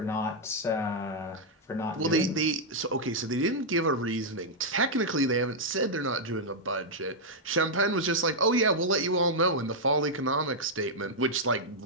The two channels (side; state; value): both; normal; correlation -0.04